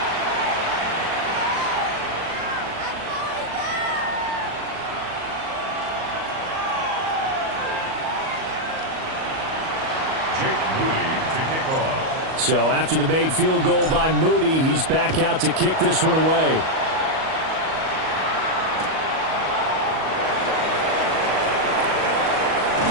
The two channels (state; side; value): late; left; 38 ms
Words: So after the made field goal by Moody, he's back out to kick this one away.